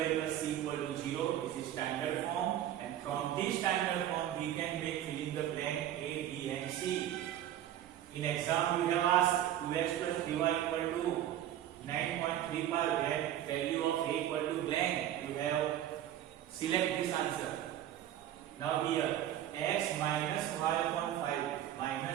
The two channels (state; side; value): quieter; left; 11.8 dB